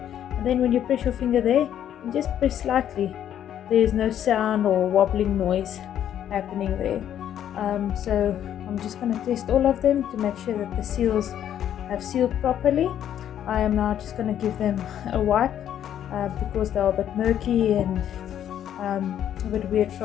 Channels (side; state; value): right; quieter; 10.4 dB